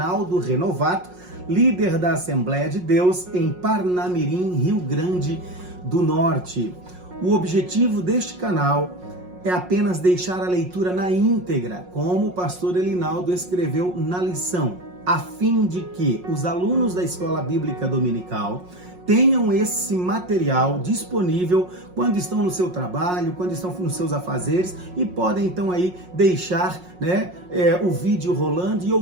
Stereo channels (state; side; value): late; left; 5.5 ms